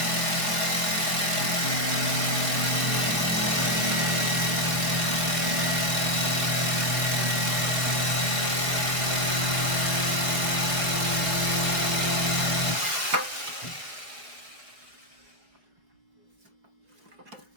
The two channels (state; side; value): late; left; 4.7 ms